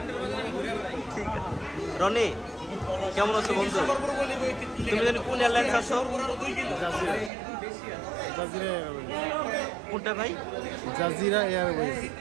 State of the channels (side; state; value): left; drops out; at 7.3 s